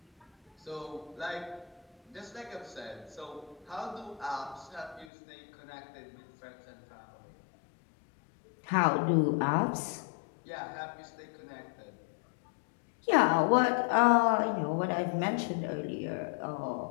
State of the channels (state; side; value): drops out; right; at 5.1 s